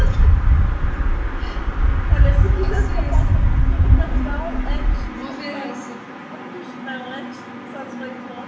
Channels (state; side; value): identical; both; correlation 1.00